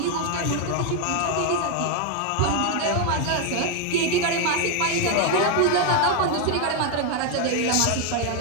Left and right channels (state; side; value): different; both; correlation 0.01